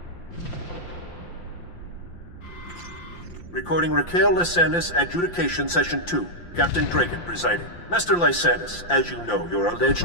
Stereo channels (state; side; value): late; right; 5.8 ms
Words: Recording Raquel Lysanis, Adjudication Session 2. Captain Dragon presiding. Master Lysanis, as you know, your